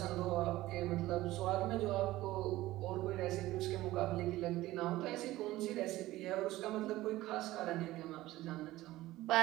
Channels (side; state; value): left; quieter; 16.8 dB